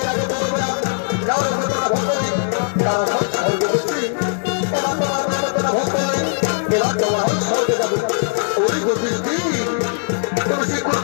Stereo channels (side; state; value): right; silent; 56 dB below the other